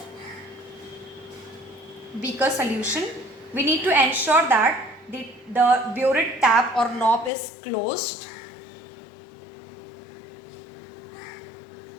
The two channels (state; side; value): drops out; right; at 7.3 s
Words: beaker solution. We need to ensure that the burette tap or knob is closed.